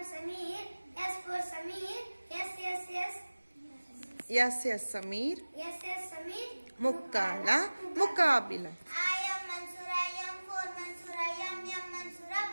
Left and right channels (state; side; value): inverted; both; correlation -1.00